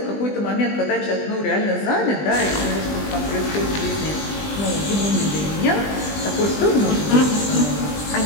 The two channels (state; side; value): late; right; 20 ms